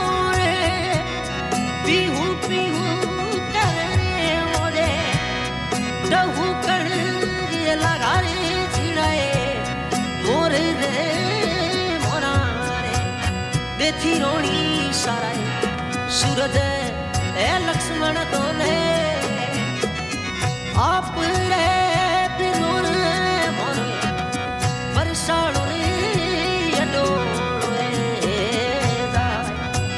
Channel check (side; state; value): both; identical; correlation 1.00